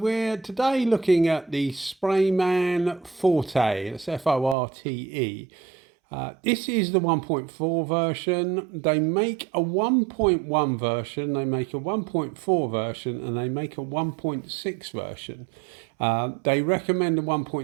today looking at the Sprayman Forte, that's F-O-R-T-E. This is the 1.4 version. They make a 1.1 version, they make a 1.4 version, and they make a 1.6 version. They recommend a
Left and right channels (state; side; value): drops out; left; at 4.5 s